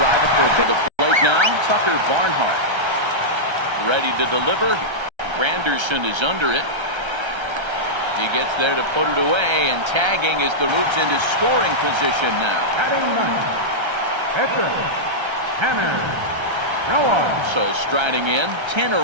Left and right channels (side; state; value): left; late; 1.3 ms